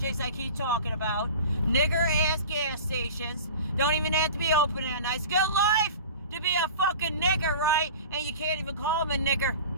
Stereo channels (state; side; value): inverted; both; correlation -0.37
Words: I keep talking about. Nigger-ass gas stations. Don't even have to be open at night. It's good life to be a fucking nigger, right? And you can't even call them a nigger.